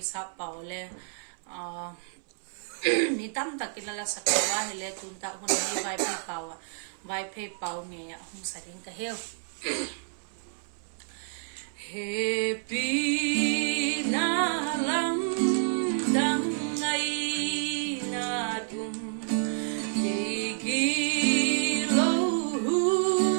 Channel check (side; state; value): left; silent; 58 dB below the other